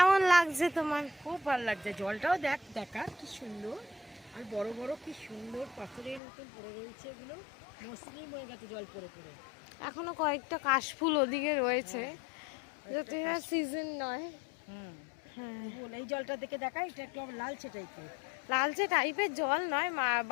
লাগছে তোমার? খুব ভালো লাগছে। জলটাও দেখ, দেখা কি সুন্দর, আর বড় বড় কি সুন্দর পাথরের মতন পড়ে রয়েছে, এগুলো মসৃণ হয়ে গেছে জল পড়ে পড়ে। এখনো কয়েকটা কাশফুল ওদিকে রয়েছে, যাতে সিজন নয়। হ্যাঁ, এই জলটা দেখে দেখা, এটা একটু আবার লালচে টাইপের। লালচে টাইপের জল নয়,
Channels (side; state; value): right; drops out; at 6.2 s